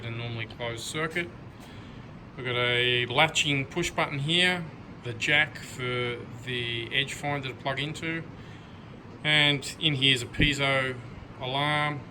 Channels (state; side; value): identical; both; correlation 1.00